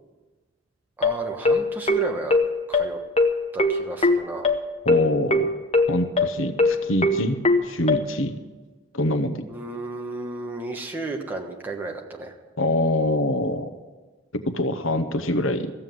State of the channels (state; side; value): normal; both; correlation 0.35